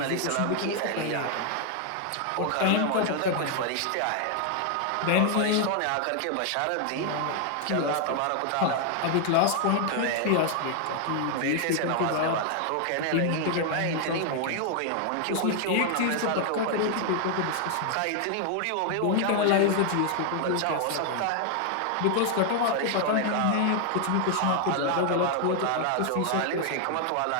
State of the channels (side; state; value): both; different; correlation 0.00